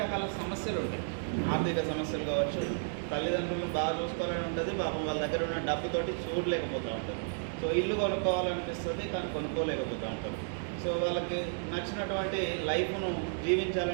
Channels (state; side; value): silent; left; 56 dB below the other